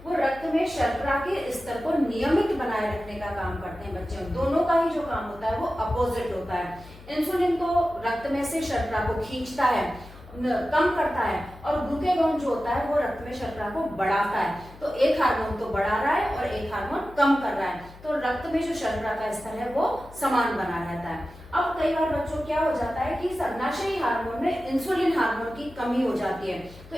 वो रक्त में शर्करा के स्तर को नियमित बनाए रखने का काम करते हैं बच्चों। दोनों का ही जो काम होता है वो अपोजिट होता है। इंसुलिन तो रक्त में से शर्करा को खींचता है, कम करता है और ग्लूकेगॉन जो होता है वो रक्त में शर्करा को बढ़ाता है। तो एक हार्मोन तो बढ़ा रहा है और एक हार्मोन कम कर रहा है, तो रक्त में जो शर्करा का स्तर है वो समान बना रहता है। अब कई बार बच्चों क्या हो जाता है कि सर्वनाशी हार्मोन में इंसुलिन हार्मोन की कमी हो जाती है। तो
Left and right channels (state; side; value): noise; left; hum, 20 dB below the sound